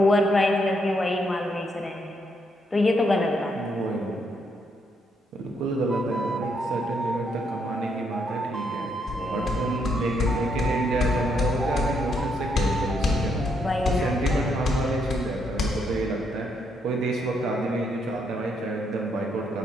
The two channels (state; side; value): normal; both; correlation 0.75